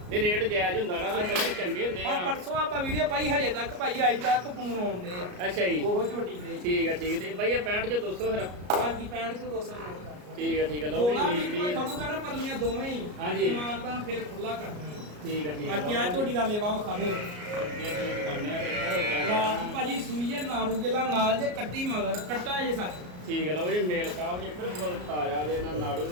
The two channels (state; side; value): late; left; 33 ms